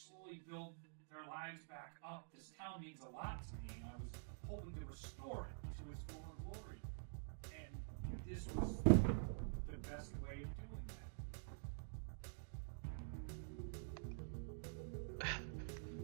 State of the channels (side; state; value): left; silent; digital silence